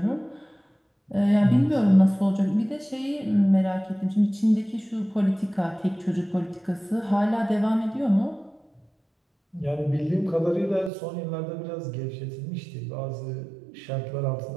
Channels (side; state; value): left; drops out; at 10.9 s